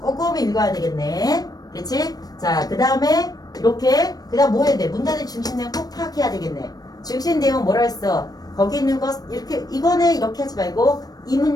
읽어야 되겠네. 그렇지? 자, 그 다음에 이렇게 그 다음 뭐 해야 돼? 문단의 중심 내용 꼭 파악해야 되겠네. 중심 내용 뭐라 했어? 거기 있는 것 이렇게 이거네 이렇게 하지 말고 이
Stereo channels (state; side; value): late; right; 0.19 ms